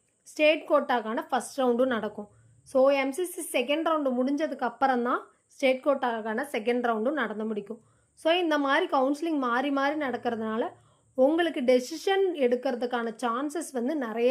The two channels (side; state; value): both; identical; correlation 1.00